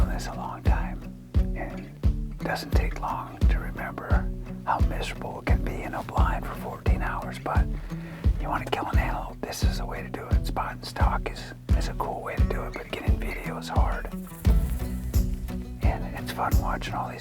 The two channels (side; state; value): both; identical; correlation 1.00